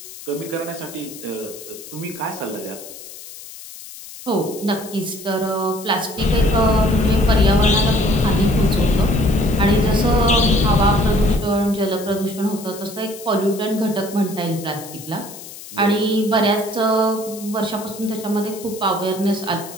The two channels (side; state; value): left; noise; hiss, 15 dB below the sound